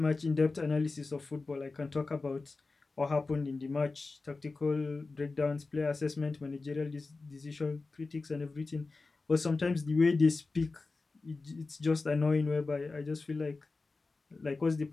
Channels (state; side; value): quieter; right; 3.8 dB